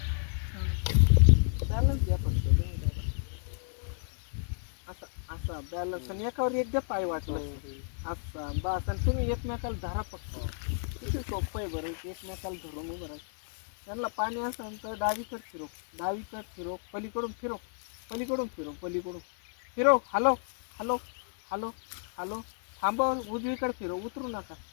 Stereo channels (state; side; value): silent; right; 57 dB below the other